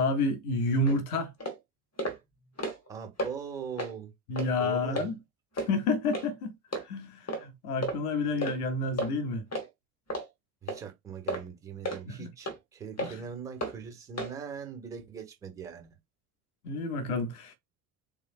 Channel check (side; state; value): both; normal; correlation 0.06